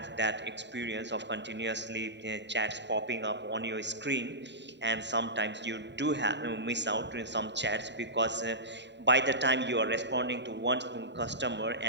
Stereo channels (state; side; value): late; left; 0.52 ms